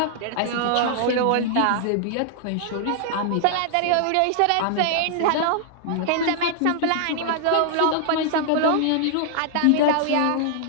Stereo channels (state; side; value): different; both; correlation -0.01